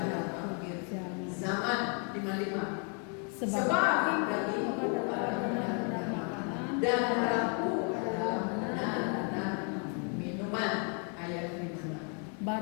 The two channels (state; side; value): quieter; right; 39.7 dB